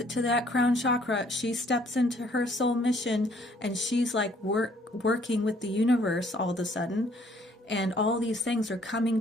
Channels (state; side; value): normal; both; correlation 0.62